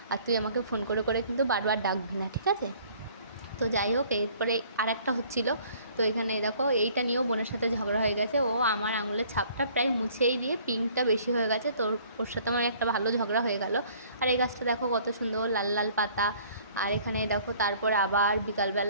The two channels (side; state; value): both; inverted; correlation -0.56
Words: আর তুই আমাকে ফোন করে করে কিন্তু বারবার ডাকবি না, ঠিক আছে। তো যাই হোক, এরপরে আর একটা হচ্ছিলো। তো এখানে দেখো, এইটা নিয়েও বোনের সাথে ঝগড়া হয়ে গেছে। ও আমার আঙুলের ছাপটা প্রায় মুছেই দিয়ে পিঙ্কটা বেশি হয়ে গেছে, তো ওর সাথে আমার একটা ভালো ঝগড়া হয়ে গেল। আর এই গাছটা দেখো কত সুন্দর লাল লাল পাতা। আর এখানে দেখো, তারপরে আবার